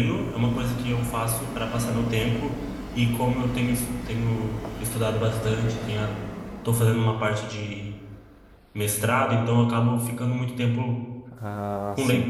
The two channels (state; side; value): identical; both; correlation 1.00